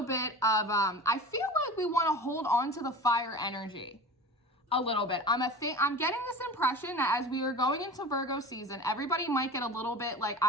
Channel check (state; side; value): normal; both; correlation 0.34